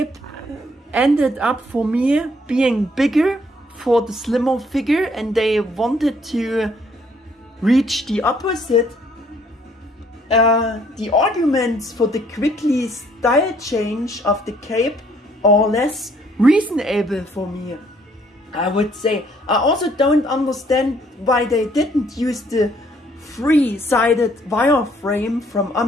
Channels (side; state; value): both; normal; correlation 0.65